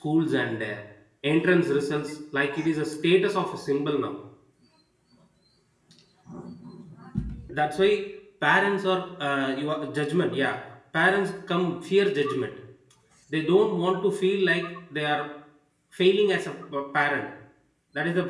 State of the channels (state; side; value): identical; both; correlation 1.00